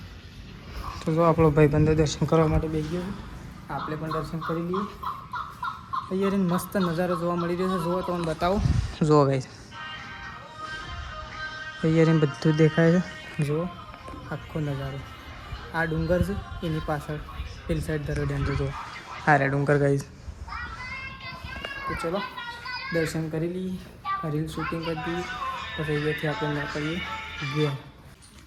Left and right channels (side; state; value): both; identical; correlation 1.00